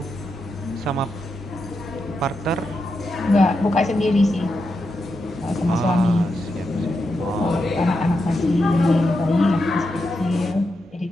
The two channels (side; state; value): both; normal; correlation 0.86